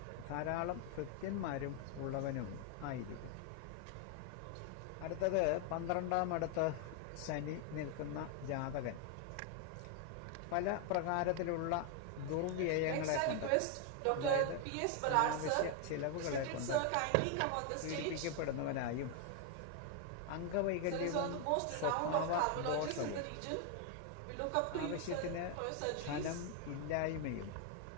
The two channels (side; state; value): both; different; correlation 0.00